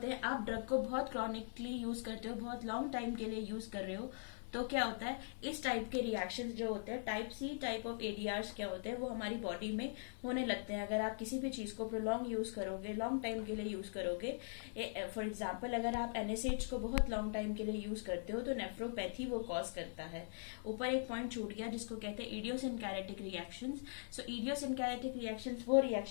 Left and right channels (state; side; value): silent; right; digital silence